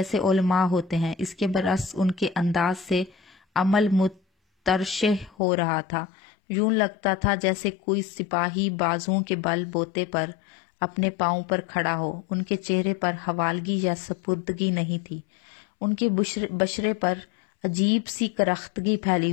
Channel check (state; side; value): drops out; right; at 5.4 s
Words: علماء ہوتے ہیں، اس کے برعکس ان کے انداز سے عمل مترشح ہو رہا تھا۔ یوں لگتا تھا جیسے کوئی سپاہی بازوؤں کے بل بوتے پر اپنے پاؤں پر کھڑا ہو۔ ان کے چہرے پر حوالگی یا سپردگی نہیں تھی، ان کے بشرے پر عجیب سی کرختگی پھیلی